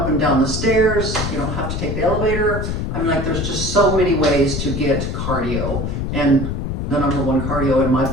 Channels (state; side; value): noise; left; rumble, 3 dB below the sound